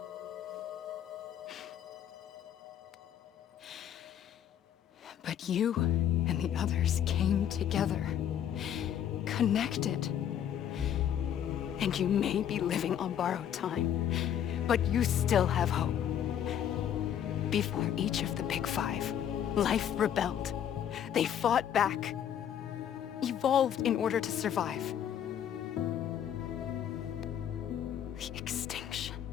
But you and the others came together, connected. And you may be living on borrowed time, but you still have hope. Before each of the Big Five, life rebelled. They fought back, evolved in order to survive. The extinction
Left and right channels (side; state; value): right; quieter; 9.7 dB